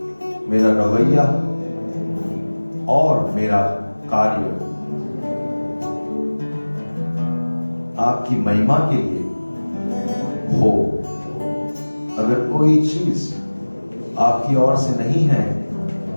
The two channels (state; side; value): inverted; both; correlation -1.00